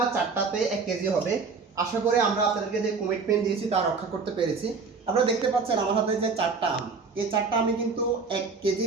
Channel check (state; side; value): quieter; left; 4.8 dB